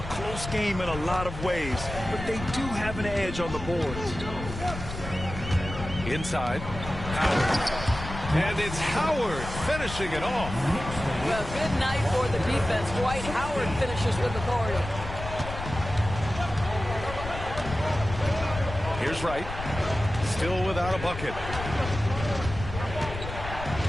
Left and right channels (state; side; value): noise; left; rumble, 9 dB below the sound